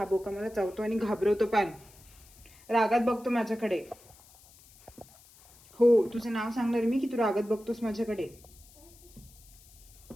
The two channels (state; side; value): noise; left; hiss, 25 dB below the sound